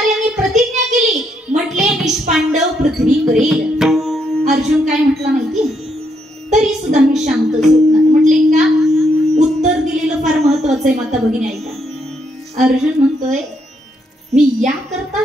प्रतिज्ञा केली, म्हटले निष्पांडव पृथ्वी करेल. अर्जुन काय म्हटला माहिती? तरी सुद्धा मी शांत झोपणार. म्हटले का? उत्तर दिलेलं फार महत्वाचं आहे माता भगिनी, ऐका. अर्जुन म्हणतोय, मी या करता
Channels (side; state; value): both; normal; correlation 0.76